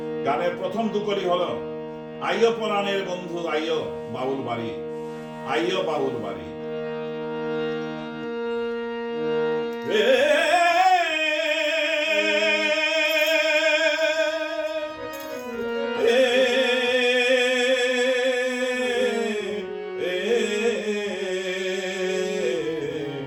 গানের প্রথম দুকলি হলো আইয়ো পরাণের বন্ধু আইয়ো বাউল বাড়ি, আইয়ো বাউল বাড়ি।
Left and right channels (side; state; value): both; identical; correlation 1.00